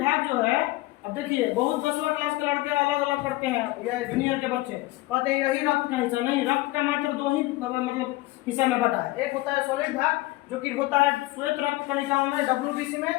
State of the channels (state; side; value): quieter; right; 19.4 dB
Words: भाग जो है, अब देखिए बहुत 10वां क्लास के लड़के अलग अलग करते हैं या जूनियर के बच्चे कहते हैं यही रक्त का हिस्सा। नहीं, रक्त का मात्र दो ही मतलब हिस्सा में बटा है। एक होता है सॉलिड भाग जो कि होता है श्वेत रक्त कणिकाओं में WBC में,